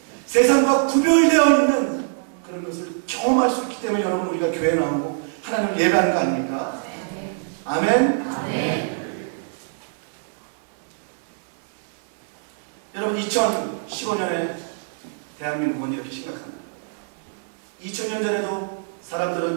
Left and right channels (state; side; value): silent; left; digital silence